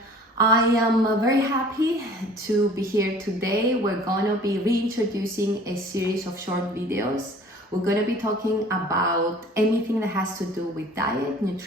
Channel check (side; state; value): both; normal; correlation 0.49